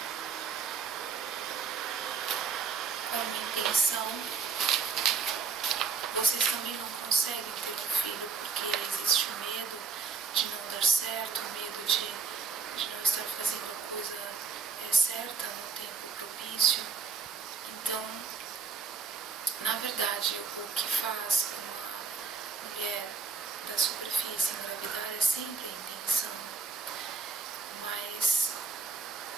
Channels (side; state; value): left; quieter; 5.4 dB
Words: uma intenção, vocês também não conseguem ter um filho porque existe o medo de não dar certo, o medo de não estar fazendo a coisa certa no tempo propício. Então, na verdade, o que faz uma mulher da superfície engravidar é sempre a intenção, mas